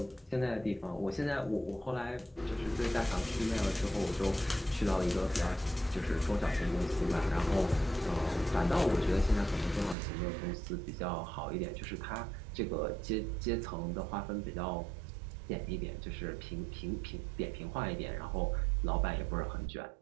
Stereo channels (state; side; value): drops out; left; at 10.0 s